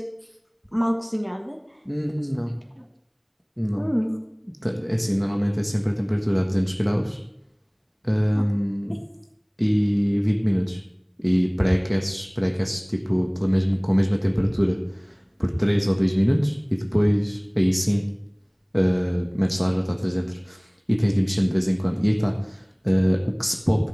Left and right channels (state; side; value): identical; both; correlation 1.00